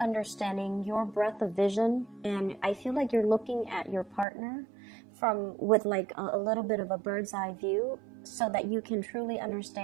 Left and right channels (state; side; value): drops out; left; at 4.2 s